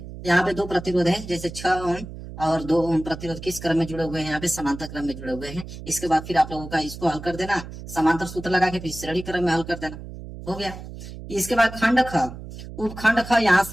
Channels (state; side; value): noise; right; hum, 12 dB below the sound